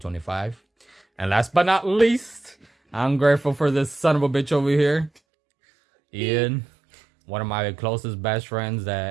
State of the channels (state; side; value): drops out; left; at 5.1 s